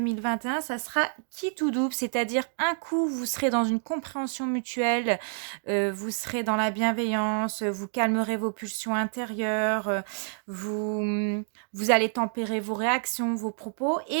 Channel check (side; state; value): left; silent; 59 dB below the other